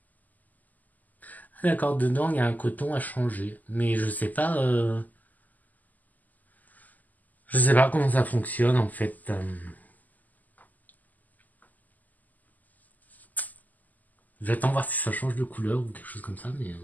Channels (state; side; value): late; right; 0.081 ms